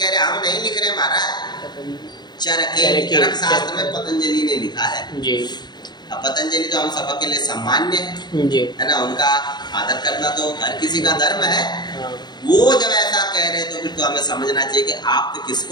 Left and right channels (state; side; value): late; right; 0.21 ms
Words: रहे हम नहीं लिख रहे महाराज, चरके चरक शास्त्र में पतंजलि ने लिखा है। अब पतंजलि तो हम सबके के लिए सम्मान्य है ना, उनका आदर करना तो हर किसी का धर्म है। वो जब ऐसा कह रहे तो फिर तो हमें समझना चाहिए कि आप तो